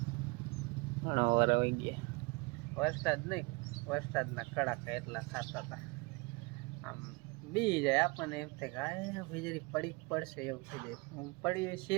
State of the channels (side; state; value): left; quieter; 27.6 dB